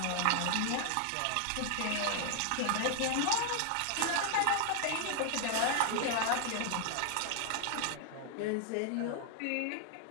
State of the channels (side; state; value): both; different; correlation 0.00